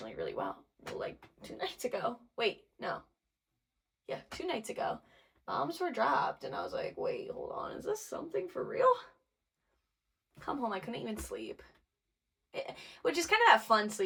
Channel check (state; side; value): identical; both; correlation 1.00